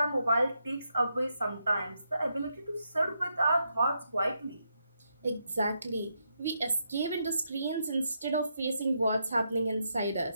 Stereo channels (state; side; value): inverted; both; correlation -0.81